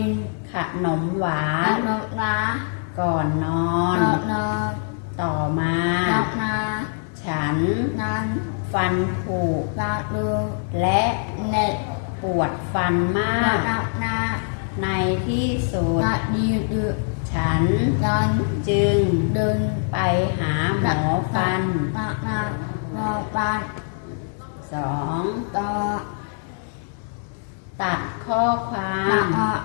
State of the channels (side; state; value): right; silent; 63 dB below the other